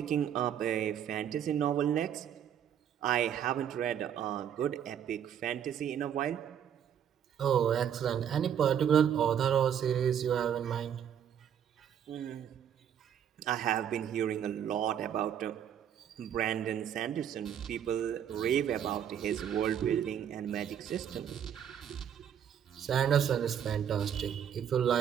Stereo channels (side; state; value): left; quieter; 9.1 dB